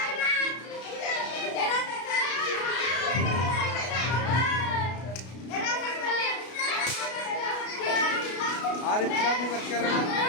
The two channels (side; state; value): right; late; 33 ms